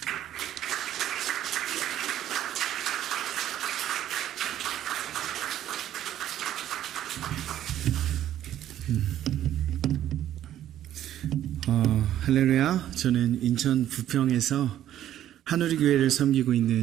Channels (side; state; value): left; quieter; 11.9 dB